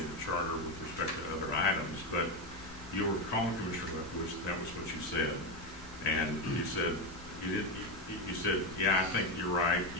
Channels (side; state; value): left; noise; rumble, 18 dB below the sound